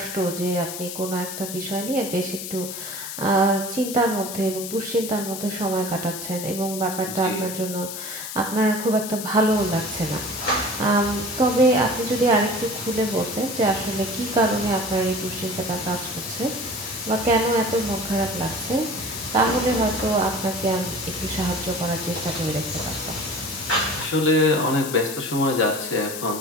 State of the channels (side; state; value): left; noise; hiss, 8 dB below the sound